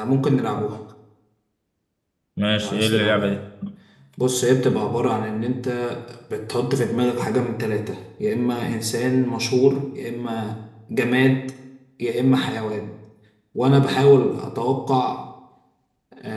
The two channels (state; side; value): identical; both; correlation 1.00